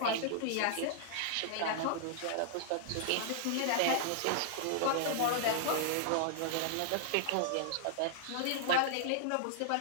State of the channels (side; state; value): both; different; correlation -0.01